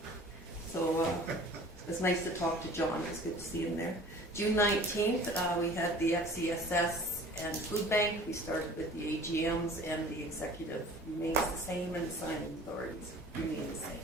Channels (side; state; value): both; normal; correlation 0.46